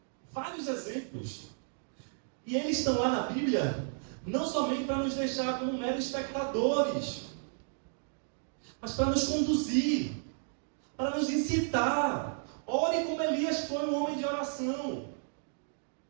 Vários exemplos. E eles estão lá na Bíblia não somente para nos deixar como meros espectadores, mas para nos conduzir, para nos incitar. Ore como Elias foi um homem de oração.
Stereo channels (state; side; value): silent; left; digital silence